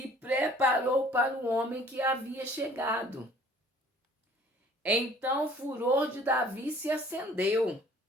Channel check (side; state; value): both; normal; correlation 0.53